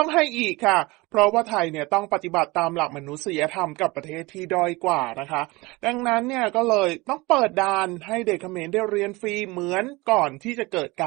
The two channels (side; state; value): left; quieter; 23.0 dB